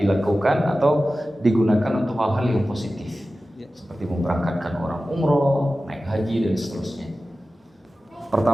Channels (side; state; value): both; normal; correlation 0.95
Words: atau digunakan untuk hal-hal yang positif, seperti memberangkatkan orang umroh, naik haji dan seterusnya.